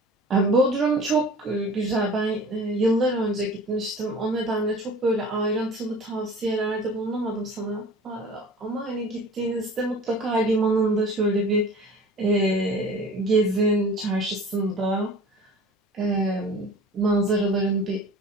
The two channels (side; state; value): both; normal; correlation 0.42